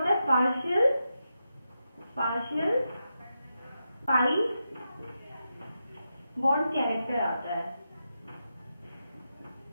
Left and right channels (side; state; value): both; inverted; correlation -0.88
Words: है, पार्शियल पाई बॉन्ड कैरेक्टर आता है।